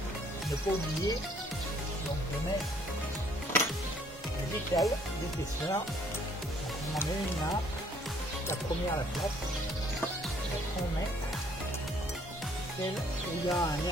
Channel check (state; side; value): normal; both; correlation 0.62